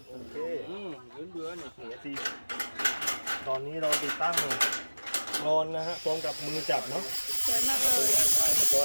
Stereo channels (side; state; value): both; inverted; correlation -1.00